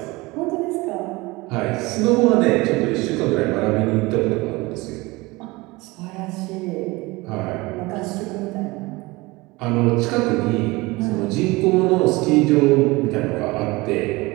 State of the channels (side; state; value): left; quieter; 22.5 dB